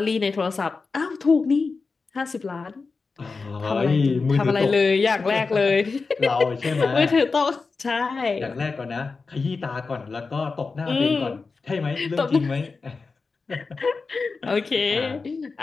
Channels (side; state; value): right; quieter; 4.3 dB